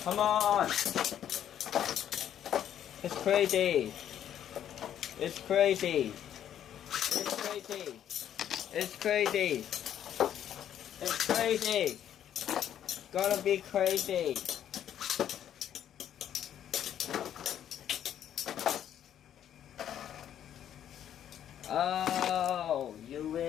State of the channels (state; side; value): quieter; right; 10.2 dB